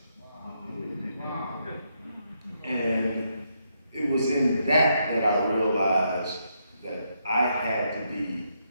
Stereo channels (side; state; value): both; inverted; correlation -0.78